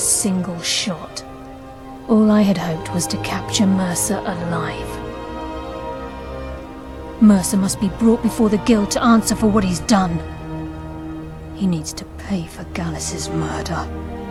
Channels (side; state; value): both; identical; correlation 1.00